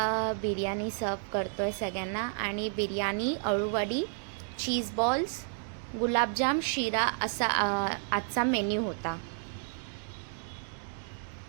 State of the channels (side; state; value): left; silent; 57 dB below the other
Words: बिर्याणी सर्व करतो आहे सगळ्यांना. आणि बिर्याणी, अळूवडी, चीज बॉल्स, गुलाबजाम, शिरा असा आजचा मेन्यू होता.